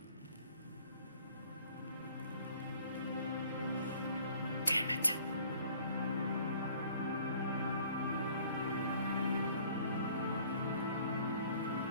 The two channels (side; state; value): both; inverted; correlation -0.55